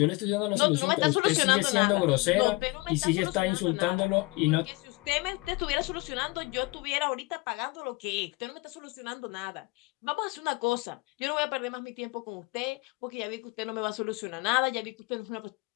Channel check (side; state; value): right; quieter; 24.7 dB